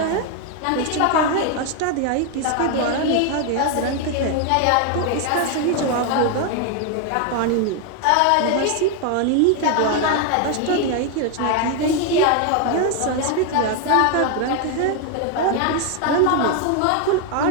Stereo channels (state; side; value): different; both; correlation 0.01